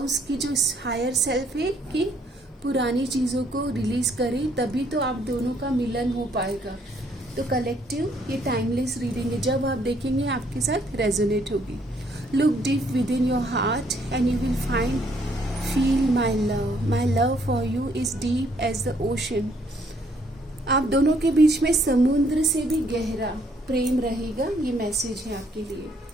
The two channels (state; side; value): normal; both; correlation 0.67